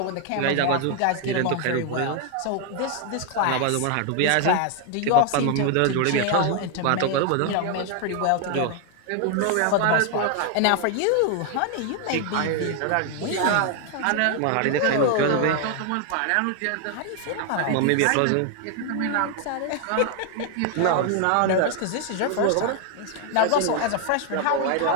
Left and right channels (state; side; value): different; both; correlation 0.00